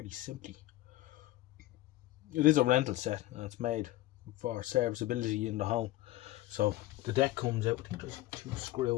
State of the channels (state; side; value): quieter; right; 16.6 dB